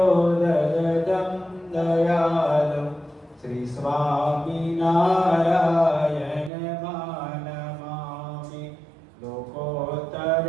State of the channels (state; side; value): drops out; left; at 6.5 s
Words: ददतं दयालु श्री स्वामिनारायणमानमामि